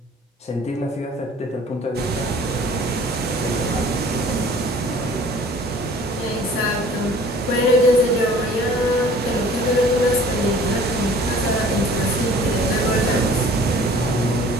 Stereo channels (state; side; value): normal; both; correlation 0.50